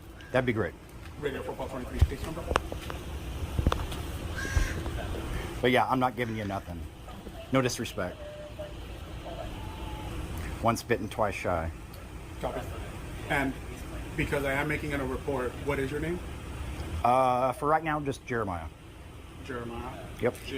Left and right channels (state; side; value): identical; both; correlation 1.00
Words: That'd be great. Radio 423 case number. But yeah, I'm not giving you nothing. No disrespect. Once bitten, twice shy. Copy. And because I am making it a report, what is your name? For right now, just Jeremiah. Jeremiah. Yep.